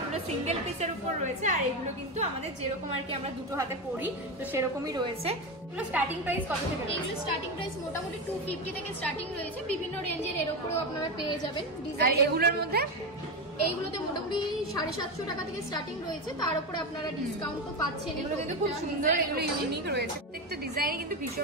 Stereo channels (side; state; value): both; normal; correlation 0.16